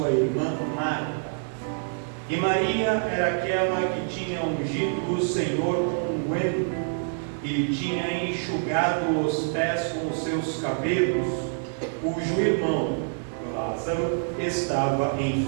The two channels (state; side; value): silent; left; digital silence